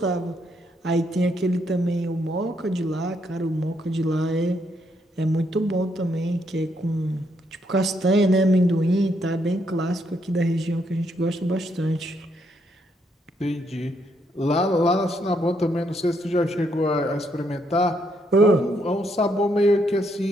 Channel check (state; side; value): normal; both; correlation 0.75